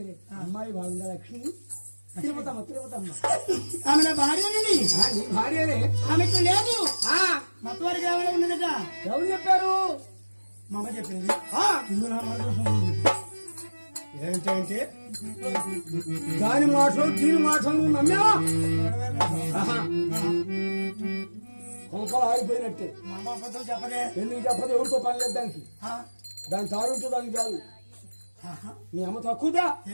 అమ్మాయి బాగుందా లక్ష్మి? తిరుపతమ్మ తిరుపతమ్మ ఆమె నా భార్యనండి. నీ భార్యనే. ఆమెకు లేదు, ఆ, మొత్తం వారికి ఏమైనా ఉన్నదట. ఎవరు చెప్పారు? మా అమ్మ చెప్పింది. ఆ, ఇందులో నా మనసు ఉంది. ఏంటంటే దాని మాటలు దీని మాటలు నువ్వు నమ్మావా? ఆహా. కొంపలు ఆగిపోయినట్టే. మా అమ్మ అబద్ధం చెప్పదే. ఎందుకు చెప్పదు? ఎవరితో పని లేదు దానికి. ఆ, దాని తారుంటే దానికి చాలు. ఆహా. మీ అమ్మ తక్కువదా?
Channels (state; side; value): inverted; both; correlation -1.00